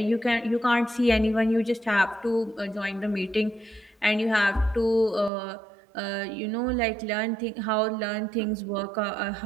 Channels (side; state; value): left; drops out; at 5.3 s